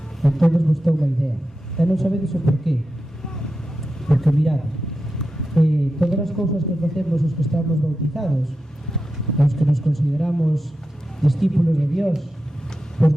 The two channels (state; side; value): normal; both; correlation 0.90